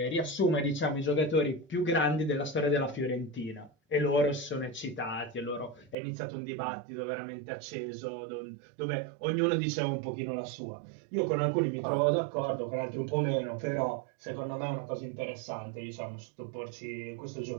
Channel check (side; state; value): left; drops out; at 6.0 s